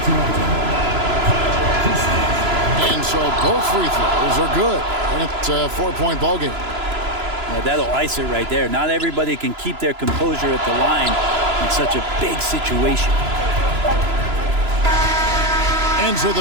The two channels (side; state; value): left; late; 3.0 ms